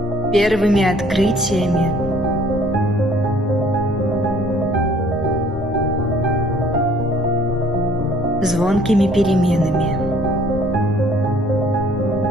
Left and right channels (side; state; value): both; normal; correlation 0.57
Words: первыми открытиями, звонкими переменами.